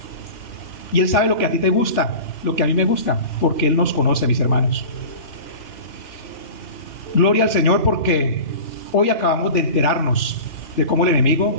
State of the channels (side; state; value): right; late; 3.5 ms